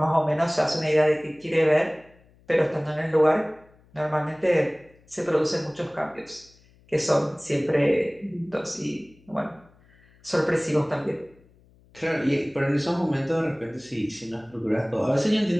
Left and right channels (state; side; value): noise; left; hum, 30 dB below the sound